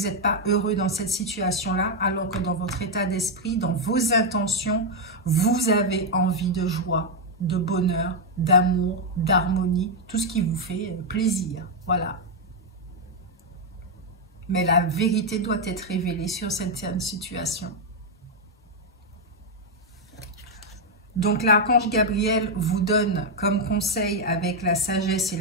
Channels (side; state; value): both; normal; correlation 0.01